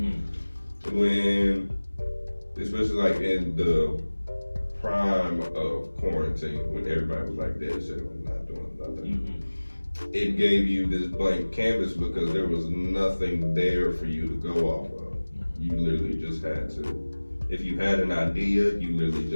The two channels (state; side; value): inverted; both; correlation -1.00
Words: When, especially like in the prime of quarantine, when everybody was like dead set on not doing nothing. Mm-hmm. It gave you this blank canvas because there was nothing there for you to go off of. You literally just had to, if you had an idea, you literally